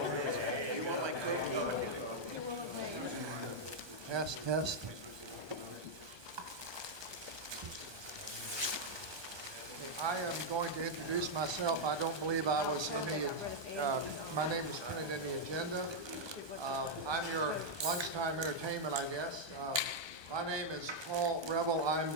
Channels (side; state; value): left; late; 1.2 ms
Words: You want my cookie? Test, test. I am going to introduce myself. I don't believe I was in the, my name was printed in the agenda. I'm your lunchtime entertainment, I guess. My name is Paul Revel. I'm